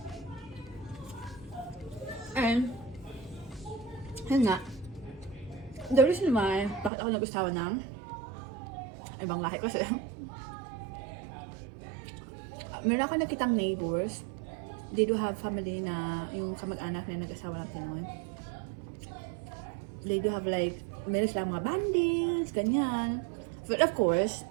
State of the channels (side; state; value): left; drops out; at 6.9 s